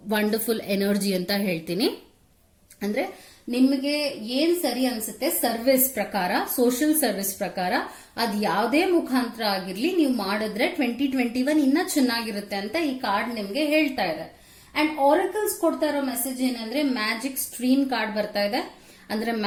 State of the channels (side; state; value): both; identical; correlation 1.00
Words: wonderful energy ಅಂತ ಹೇಳ್ತೀನಿ. ಅಂದ್ರೆ ನಿಮಗೆ ಏನ್ ಸರಿ ಅನ್ಸುತ್ತೆ ಸರ್ವಿಸ್ ಪ್ರಕಾರ, ಸೋಷಿಯಲ್ ಸರ್ವಿಸ್ ಪ್ರಕಾರ ಅದ್ ಯಾವುದೇ ಮುಖಾಂತರ ಆಗಿರ್ಲಿ ನೀವು ಮಾಡಿದ್ರೆ 2021 ಇನ್ನ ಚೆನ್ನಾಗಿರುತ್ತೆ ಅಂತ ಈ ಕಾರ್ಡ್ ನಿಮ್ಗೆ ಹೇಳ್ತಾ ಇದೆ. ಅಂಡ್ ಆರಕಲ್ಸ್ ಕೊಡ್ತಾ ಇರೋ ಮೆಸೇಜ್ ಏನಂದ್ರೆ ಮ್ಯಾಜಿಕ್ ಸ್ಟ್ರೀಮ್ ಕಾರ್ಡ್ ಬರ್ತಾ ಇದೆ. ಅಂದ್ರೆ